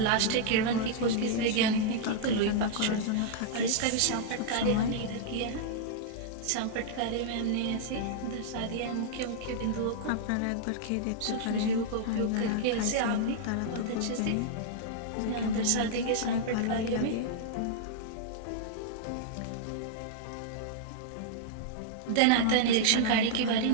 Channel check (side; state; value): both; different; correlation -0.01